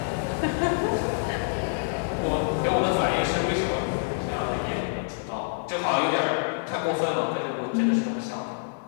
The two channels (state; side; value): silent; right; 60 dB below the other